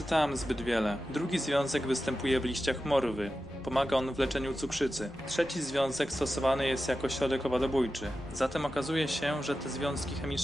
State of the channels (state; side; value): normal; both; correlation 0.92